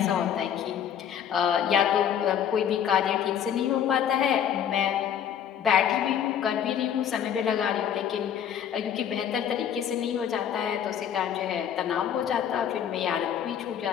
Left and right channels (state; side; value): quieter; right; 9.1 dB